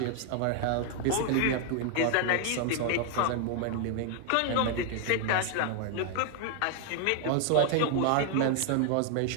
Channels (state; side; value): different; both; correlation 0.00